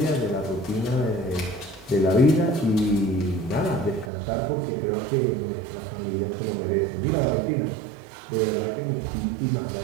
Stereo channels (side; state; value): left; drops out; at 4.1 s